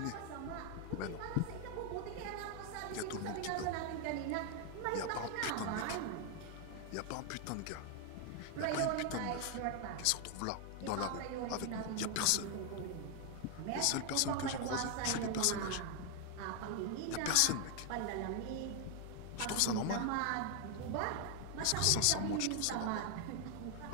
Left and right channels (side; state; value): both; different; correlation 0.00